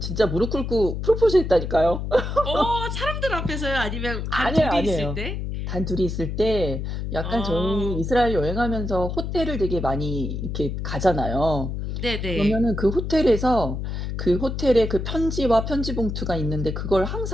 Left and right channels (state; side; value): noise; left; hum, 4 dB below the sound